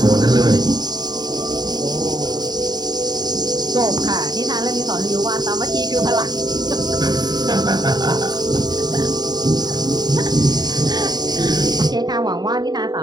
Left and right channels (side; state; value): left; late; 0.20 ms